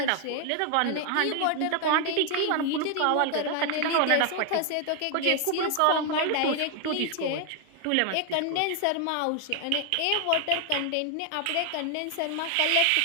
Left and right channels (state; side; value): different; both; correlation 0.00